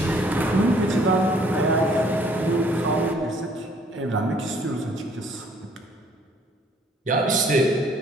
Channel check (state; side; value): normal; both; correlation 0.61